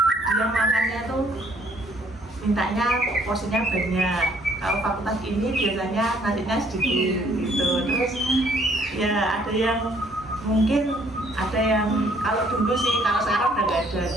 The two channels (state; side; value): normal; both; correlation 0.63